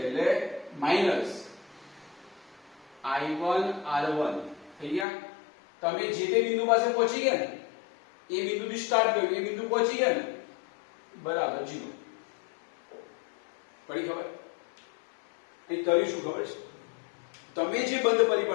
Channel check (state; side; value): drops out; right; at 5.1 s